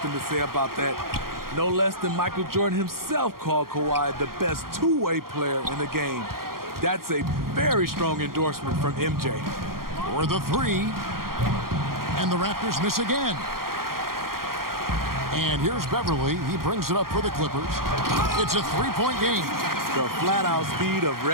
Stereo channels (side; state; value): left; late; 0.92 ms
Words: to say about that. No less than Michael Jordan himself called Kawhi the best two-way player in the game. That's a very strong endorsement from MJ. For the 3. And the Raptors miss again. And here's Beverly. He brings it up for the Clippers. It's a 3-point game. The flat-out speed of